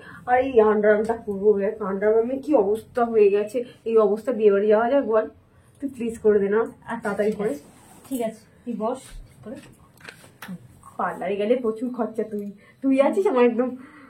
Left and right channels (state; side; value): identical; both; correlation 1.00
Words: আর এই আন্ডারআর্মটা করবো। আন্ডারআর্মে কি অবস্থা হয়ে গেছে, এই অবস্থা বিয়ে বাড়ি যাওয়া যায় বল? তুই প্লিজ করে দে না তাড়াতাড়ি করে। ঠিক আছে, তুই বস করে। পার্লারে গেলে প্রচুর খরচা, তুই আছিস আমার একদম